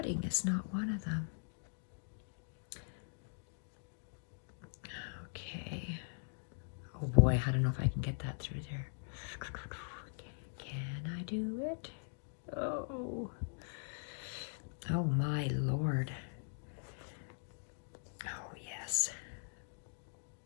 is not one of them. Okay. Oh boy, I don't know if I can get that through there. Can I do it? Oh. Oh my Lord. Oh yes.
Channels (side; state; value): right; silent; digital silence